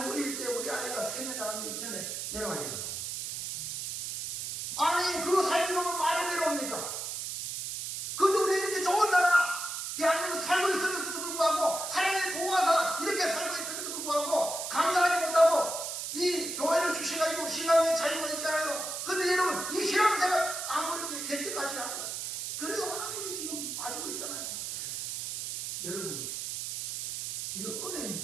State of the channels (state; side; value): noise; right; hiss, 5 dB below the sound